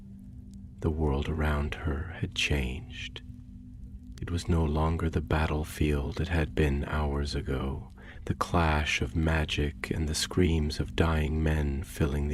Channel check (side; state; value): both; identical; correlation 1.00